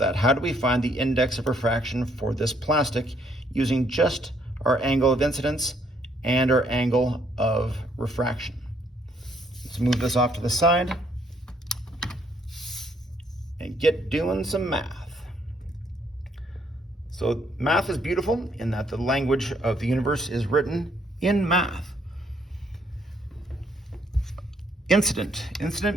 How do we find the index of refraction for this plastic using just our angle of incidence and our angle of refraction? Let's move this off to the side and get doing some math. So math is beautiful in that the language of the universe is written in math. Incident.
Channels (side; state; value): both; normal; correlation 0.69